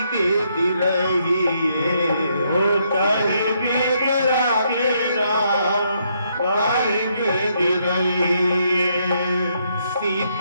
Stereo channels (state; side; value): inverted; both; correlation -0.74